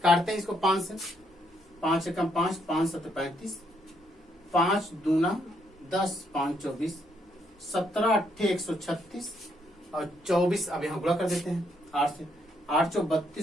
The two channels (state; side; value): normal; both; correlation 0.73